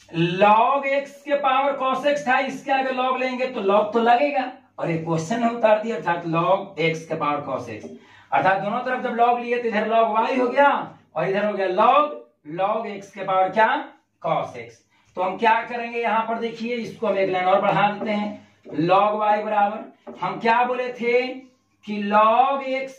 log x के पावर cos x था, इसके आगे log लेंगे तो log तो लगेगा, और एक क्वेश्चन है उतार दिया, अर्थात log x के पावर cos x, अर्थात दोनों तरफ जब log लिए तो इधर log y हो गया, और इधर हो गया log x के पावर क्या, cos x। तो हम क्या करेंगे, यहां पर देखिए, इसको हम एक लाइन और बढ़ा देते हैं, log y बराबर, हम क्या बोले थे कि log x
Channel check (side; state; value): both; identical; correlation 1.00